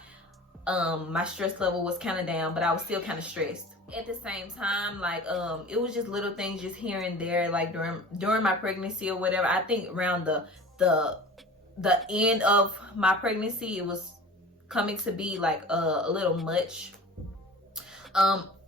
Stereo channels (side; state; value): both; normal; correlation 0.40